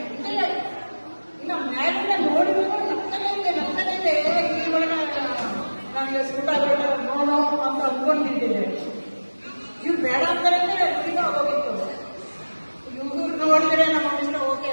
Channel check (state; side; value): inverted; both; correlation -1.00